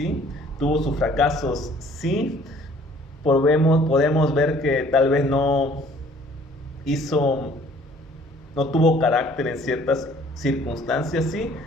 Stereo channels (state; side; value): normal; both; correlation 0.56